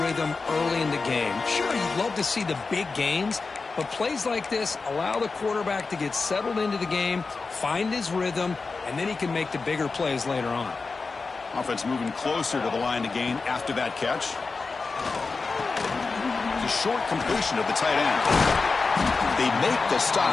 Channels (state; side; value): quieter; right; 4.2 dB